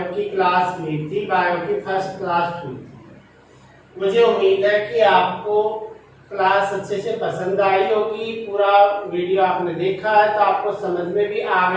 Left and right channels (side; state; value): both; identical; correlation 1.00